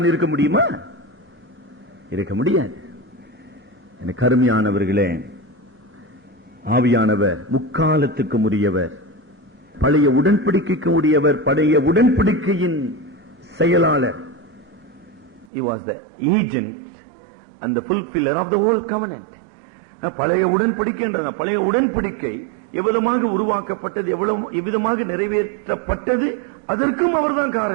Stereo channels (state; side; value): drops out; left; at 15.5 s